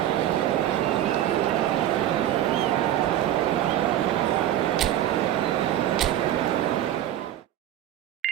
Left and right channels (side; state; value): left; quieter; 12.2 dB